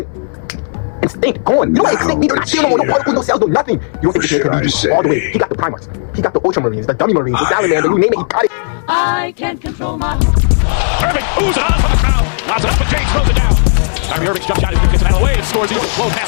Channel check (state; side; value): silent; right; digital silence